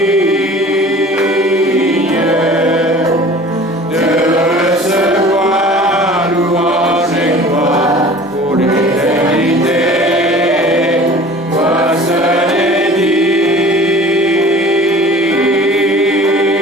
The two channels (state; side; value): normal; both; correlation 0.44